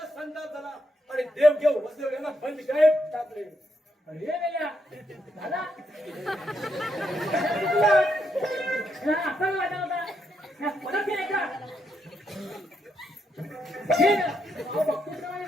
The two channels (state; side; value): normal; both; correlation 0.80